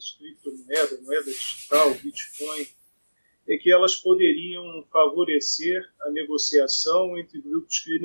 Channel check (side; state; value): both; inverted; correlation -1.00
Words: moeda digital, Bitcoin, é que elas poderiam favorecer a negociação entre grupos